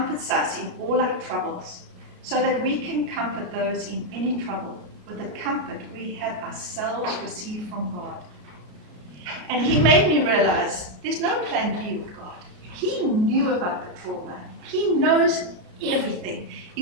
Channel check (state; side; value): late; left; 33 ms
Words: us in all our troubles, so that we can comfort those in any trouble with the comfort we have ourselves received from God. And he made me realize there's no plan B with God. He knew about the trauma. He knows everything.